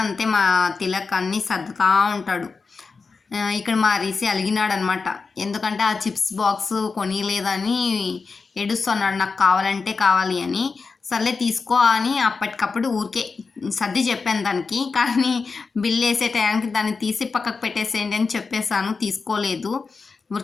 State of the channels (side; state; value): right; quieter; 4.6 dB